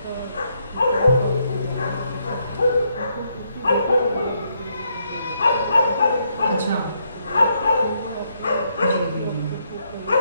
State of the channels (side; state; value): both; inverted; correlation -0.75